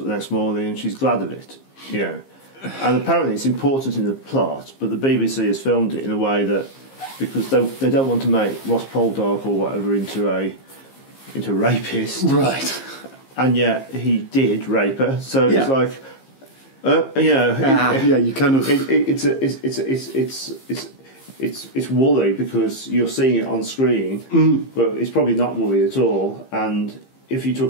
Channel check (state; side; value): late; right; 15 ms